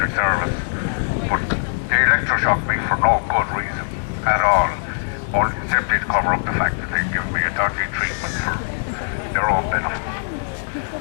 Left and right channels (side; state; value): right; silent; digital silence